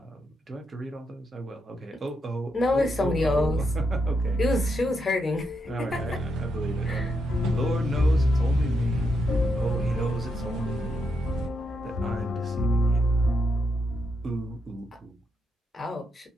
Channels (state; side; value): normal; both; correlation 0.81